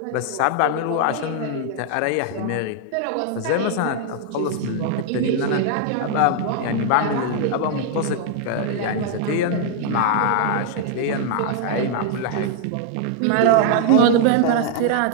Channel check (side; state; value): both; different; correlation 0.00